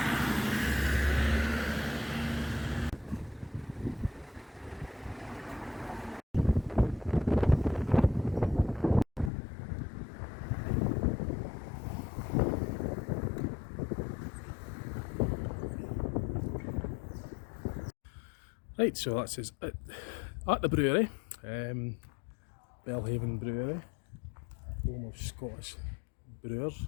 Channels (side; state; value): right; drops out; at 9.3 s